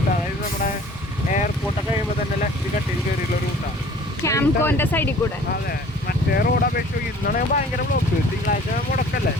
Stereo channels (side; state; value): both; normal; correlation 0.50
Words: അതായത് നമ്മുടെ എയർപോർട്ടൊക്കെ കഴിയുമ്പോൾ തന്നെ ലെഫ്റ്റ് കട്ടിൽ കയറിയുള്ള റൂട്ടാണ്. ക്യാംകോന്റെ സൈഡിൽ കൂടെ. അതെ, മറ്റേ റോഡ് അപേക്ഷിച്ച് ഇന്നാണ് ഭയങ്കര ബ്ലോക്ക്. തിങ്കളാഴ്ച മുടക്കല്ലേ,